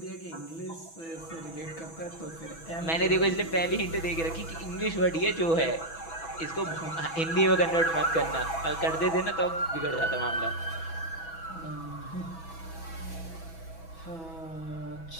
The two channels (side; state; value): right; late; 6.1 ms